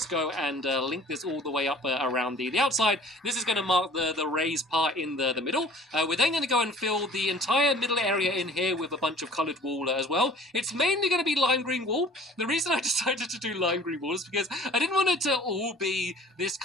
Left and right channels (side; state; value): both; normal; correlation 0.49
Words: go and link this all the way up around the outside. This is going to mark the raised part in the middle. We're then going to go and fill the entire middle area in here with a bunch of coloured wool as well. It's mainly going to be lime green wool. The reason I decided to do lime green wool is because I didn't want it to all be this